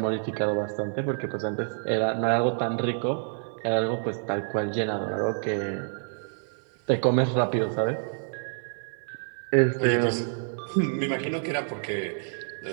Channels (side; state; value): left; silent; 60 dB below the other